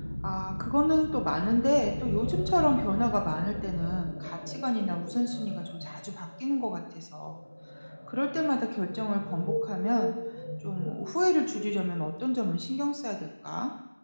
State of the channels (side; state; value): both; inverted; correlation -1.00